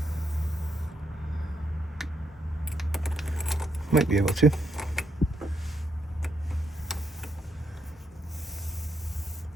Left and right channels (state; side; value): normal; both; correlation 0.77